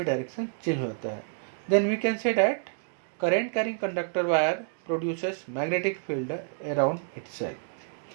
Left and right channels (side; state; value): left; silent; digital silence